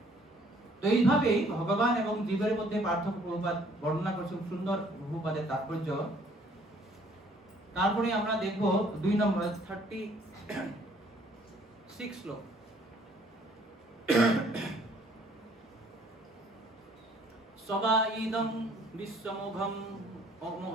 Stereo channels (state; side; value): normal; both; correlation 0.60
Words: তো এইভাবে ভগবান এবং জীবের মধ্যে পার্থক্য প্রভুপাদ বর্ণনা করছেন, সুন্দর প্রভুপাদের তাৎপর্য। তারপরে আমরা দেখব 2 নম্বর 36 শ্লোক। সবাইদং বিশ্বমোঘম